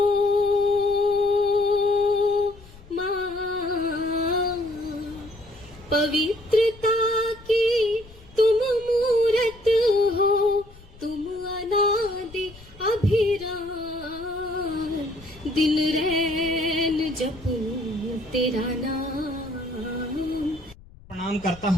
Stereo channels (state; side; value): noise; left; rumble, 22 dB below the sound